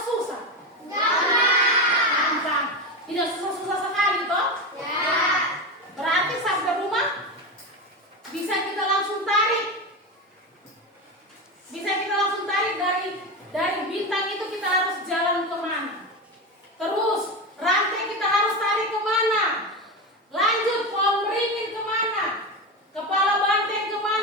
Gampang. Tidak susah-susah sekali toh? Ya. Berarti sampai rumah bisa kita langsung tarik. Bisa kita langsung tarik dari bintang itu kita harus jalan kemana. Terus rantai kita harus tarik kemana. Lanjut pohon beringin kemana. Kepala banteng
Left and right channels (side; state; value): both; normal; correlation 0.19